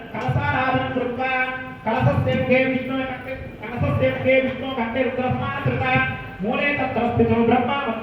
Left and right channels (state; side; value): identical; both; correlation 1.00